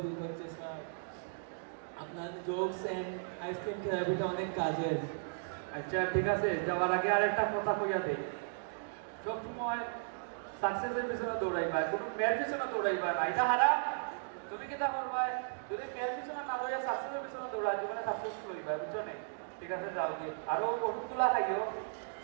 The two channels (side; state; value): left; silent; digital silence